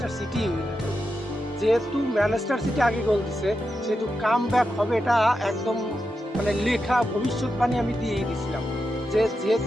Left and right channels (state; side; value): normal; both; correlation 0.88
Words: সিটি উইনার। যেহেতু ম্যানচেস্টার সিটি আগে গোল দিছে, সেহেতু কামব্যাক হবে, এটা একদম মানে লেখা ভবিষ্যৎবাণী আমি দিয়েই দিছিলাম যে